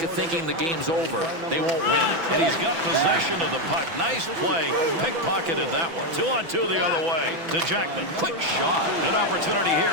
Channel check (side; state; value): left; late; 6.0 ms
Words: of thinking the game's over, they won't win. And he's got possession of the puck. Nice play. Pickpocketed that one. 2-on-2 the other way to Jackman. Quick shot. Good opportunity